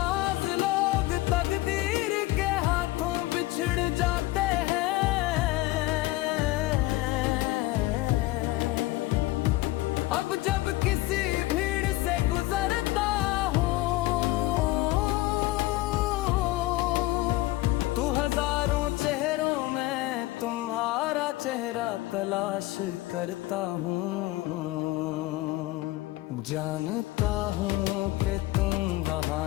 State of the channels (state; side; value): quieter; right; 18.4 dB